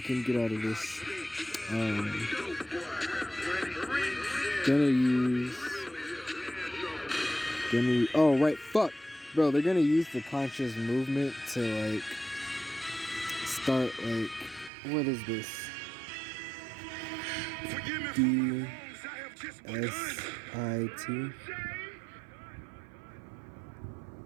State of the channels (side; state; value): left; drops out; at 14.7 s